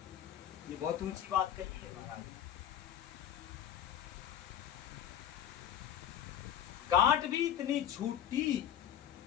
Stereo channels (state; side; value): quieter; right; 10.3 dB